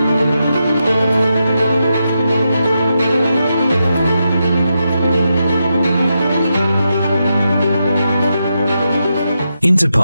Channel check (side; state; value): both; inverted; correlation -0.85